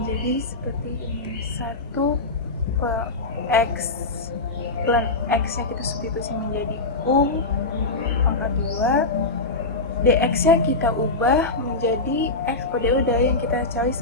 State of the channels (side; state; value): right; quieter; 3.3 dB